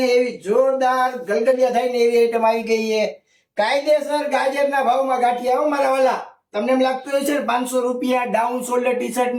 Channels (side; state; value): both; identical; correlation 1.00